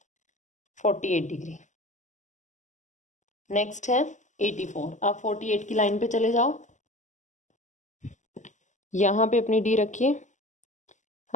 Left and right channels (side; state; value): right; late; 0.35 ms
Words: 48 डिग्री। नेक्स्ट है 84। अब 48 की लाइन पे चले जाओ, यहाँ पे अपनी डी रखिए।